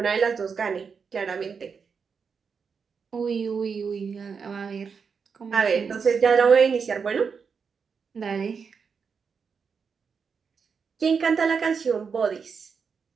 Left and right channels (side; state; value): left; quieter; 5.8 dB